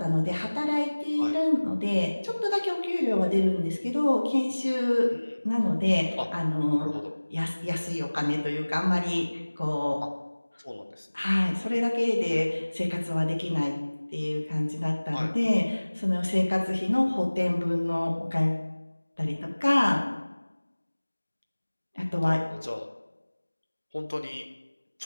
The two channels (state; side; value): inverted; both; correlation -1.00